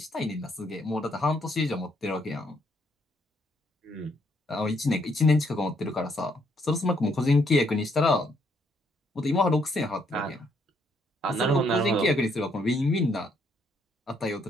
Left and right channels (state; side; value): normal; both; correlation 0.71